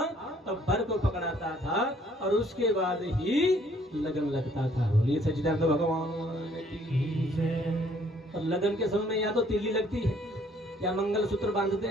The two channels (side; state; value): both; normal; correlation 0.61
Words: तब वर को पकड़ाता था, और उसके बाद ही लगन लगता था। बोलिए सच्चिदानंद भगवान की जय। और लगन के समय में या तो तिल्ली लगती है, या मंगलसूत्र बांधते